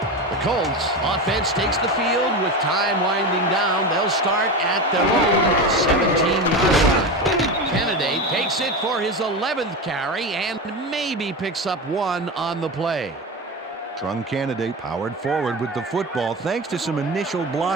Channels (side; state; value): both; normal; correlation 0.22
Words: The Colts offense takes the field with time winding down. They'll start at their own 17-yard line. Candidate takes it for his 11th carry and maybe picks up one on the play. Trung Candidate powered forward with the football thanks to some initial